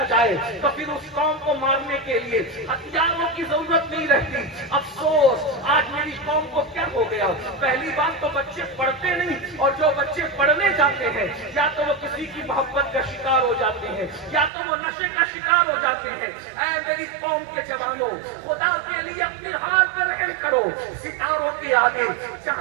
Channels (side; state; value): left; drops out; at 14.5 s